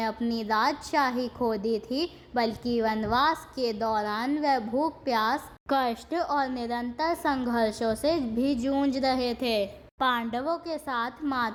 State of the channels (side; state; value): both; identical; correlation 1.00